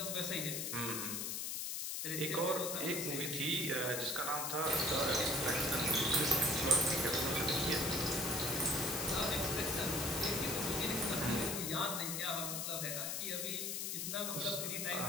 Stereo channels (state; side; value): noise; left; hiss, 2 dB below the sound